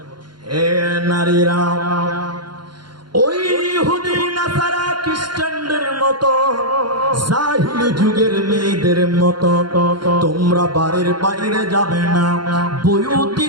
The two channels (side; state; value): left; late; 0.71 ms